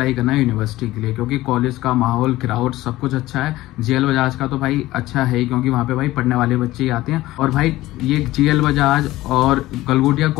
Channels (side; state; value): right; quieter; 16.9 dB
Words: करना यूनिवर्सिटी के लिए, क्योंकि कॉलेज का माहौल, क्राउड सब कुछ अच्छा है। GL बजाज का तो भाई अच्छा है ही, क्योंकि वहाँ पे भाई पढ़ने वाले बच्चे ही आते हैं। और भाई ये GL बजाज और गलगोटिया